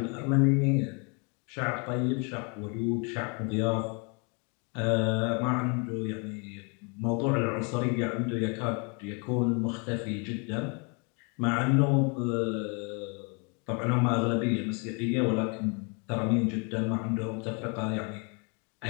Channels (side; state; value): right; quieter; 34.2 dB